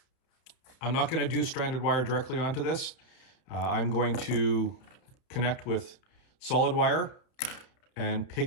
I'm not going to do stranded wire directly onto this. I'm going to connect with solid wire and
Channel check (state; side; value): late; right; 31 ms